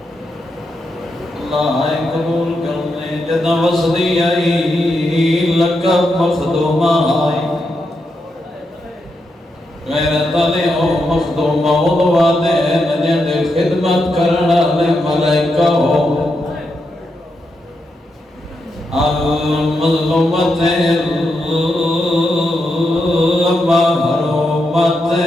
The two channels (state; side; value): normal; both; correlation 0.84